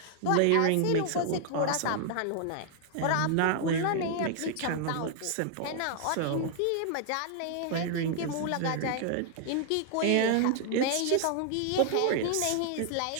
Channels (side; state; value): both; different; correlation 0.00